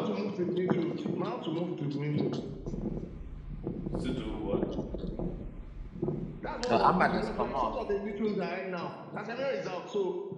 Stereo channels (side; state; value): both; identical; correlation 1.00